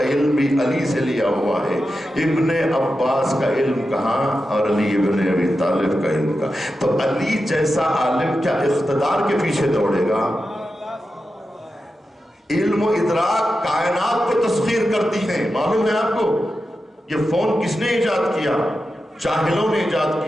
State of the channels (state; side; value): normal; both; correlation 0.90